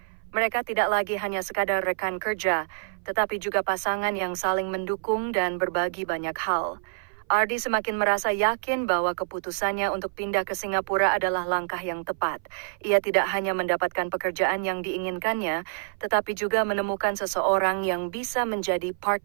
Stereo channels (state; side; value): silent; left; 58 dB below the other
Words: Mereka tidak lagi hanya sekadar rekan kerja, tetapi juga pasangan yang saling mendukung dan berbagi banyak hal. Ardi semakin merasa yakin bahwa keputusannya untuk pindah ke Singapura adalah langkah yang tepat. Ia tidak hanya mendapatkan pekerjaan yang diinginkannya, tetapi juga menemukan seseorang yang bisa menjadi